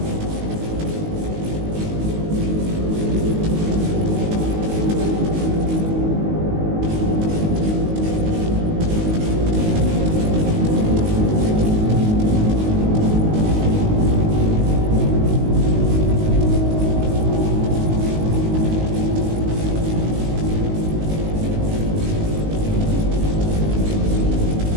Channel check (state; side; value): late; left; 19 ms